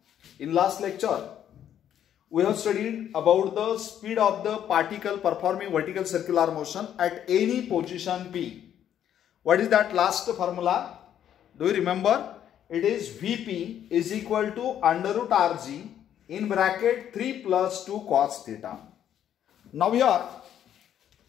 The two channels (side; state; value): right; quieter; 10.1 dB